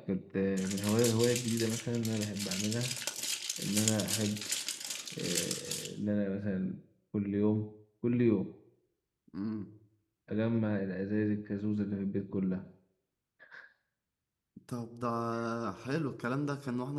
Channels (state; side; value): identical; both; correlation 1.00